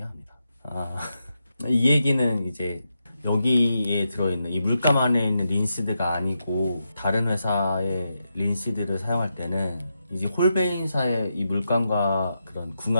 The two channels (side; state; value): both; inverted; correlation -0.85